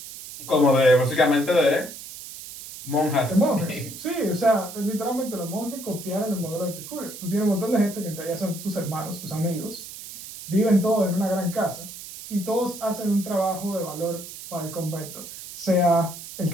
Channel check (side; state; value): right; noise; hiss, 12 dB below the sound